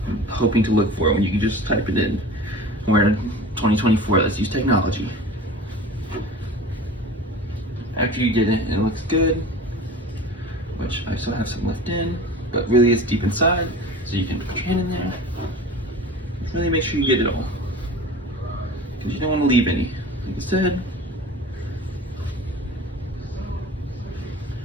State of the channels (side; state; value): both; normal; correlation 0.38